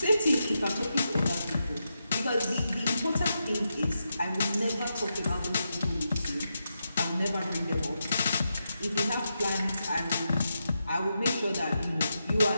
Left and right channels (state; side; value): inverted; both; correlation -0.86